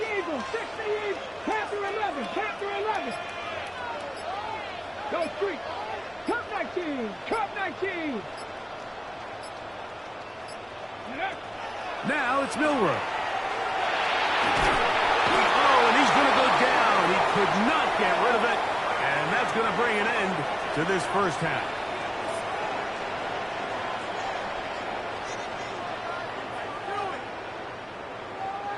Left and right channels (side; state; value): both; identical; correlation 1.00